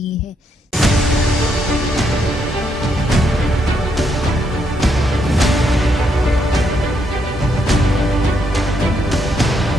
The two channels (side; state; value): both; normal; correlation 0.76